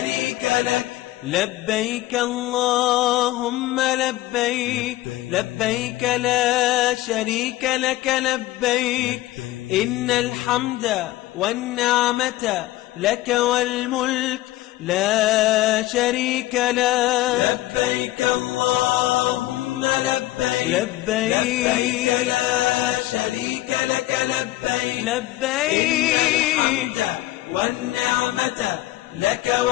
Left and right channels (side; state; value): right; quieter; 16.7 dB